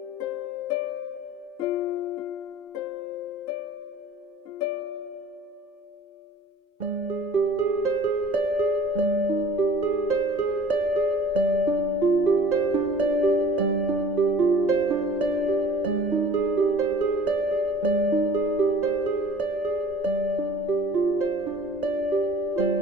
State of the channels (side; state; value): both; normal; correlation 0.47